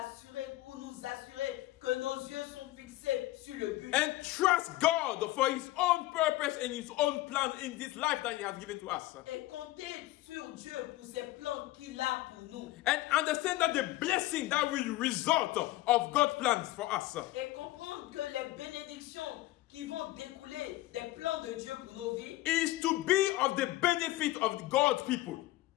ou nous assurer que nos yeux sont fixés sur le but. And trust God for His own purpose and His own plan in this life that He has given to us. Et compter sur Dieu pour ses plans qu'il a pour nous. And understand that the blessing that will result of God's plans for us Et comprendre que les bénédictions qui vont découler des plans de Dieu pour nos vies is to be of the benefit of God's people.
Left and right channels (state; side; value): quieter; right; 17.6 dB